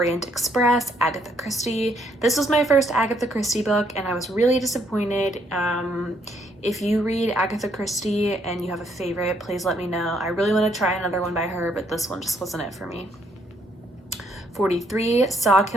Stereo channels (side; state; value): both; normal; correlation 0.70